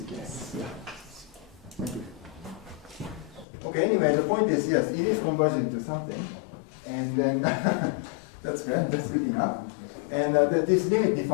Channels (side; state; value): right; drops out; at 3.5 s